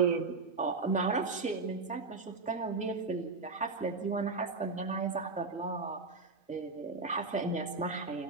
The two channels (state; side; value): quieter; left; 4.0 dB